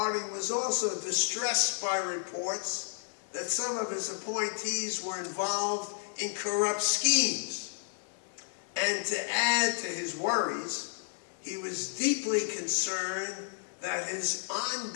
was also distressed by reports that some of his appointees were involved in corrupt schemes. And to add to his worries, he was deeply concerned that his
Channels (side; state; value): right; silent; 57 dB below the other